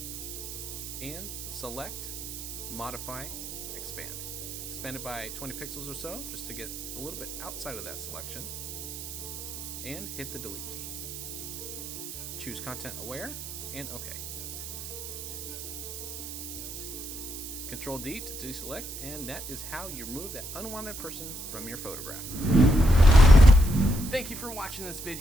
and select, modify, expand. Expand it by 20 pixels or so just to get a little bit outside of that selection, and hit the delete key. Choose content aware and OK. Control D to deselect, and that is how you remove that unwanted person from your photograph. Thank you for watching this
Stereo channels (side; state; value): right; noise; hiss, 9 dB below the sound